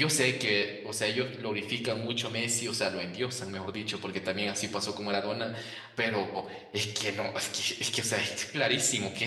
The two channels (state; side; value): identical; both; correlation 1.00